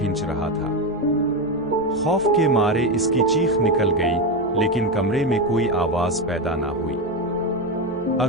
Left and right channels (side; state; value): right; noise; hum, 24 dB below the sound